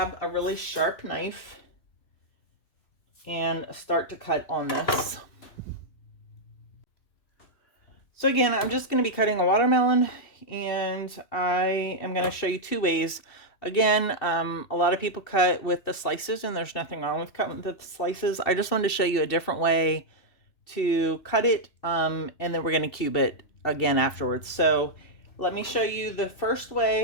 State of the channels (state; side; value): late; right; 2.7 ms